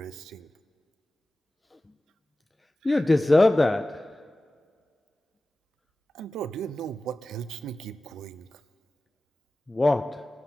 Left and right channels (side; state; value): both; normal; correlation 0.96